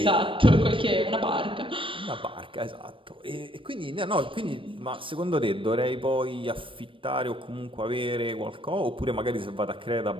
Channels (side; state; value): left; late; 0.25 ms